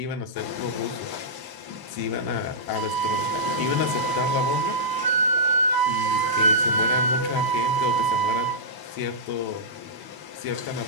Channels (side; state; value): left; late; 1.0 ms